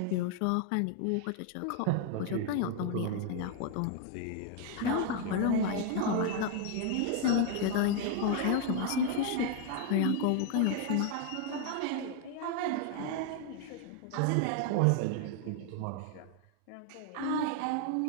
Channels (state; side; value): different; both; correlation 0.01